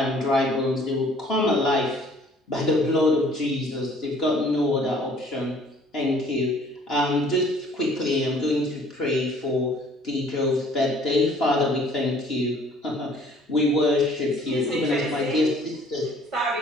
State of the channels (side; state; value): both; normal; correlation 0.56